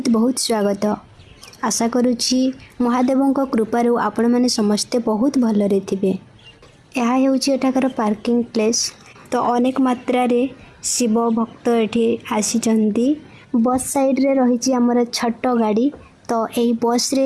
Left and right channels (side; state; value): both; identical; correlation 1.00